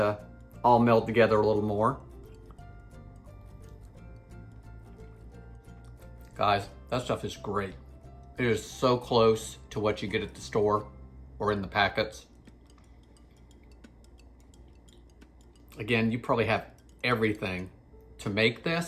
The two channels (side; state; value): both; identical; correlation 1.00